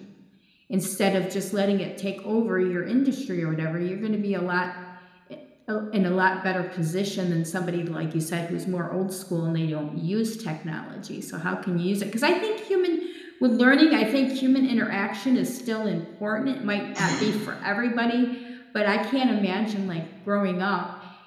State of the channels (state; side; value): identical; both; correlation 1.00